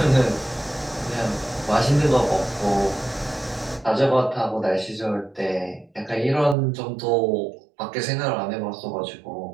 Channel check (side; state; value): left; drops out; at 6.6 s